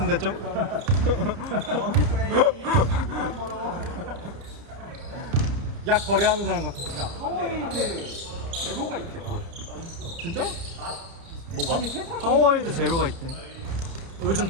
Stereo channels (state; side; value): late; left; 30 ms